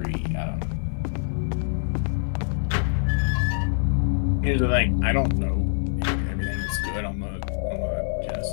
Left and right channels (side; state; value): right; silent; digital silence